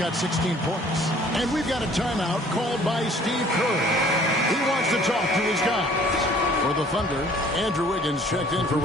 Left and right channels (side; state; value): both; normal; correlation 0.55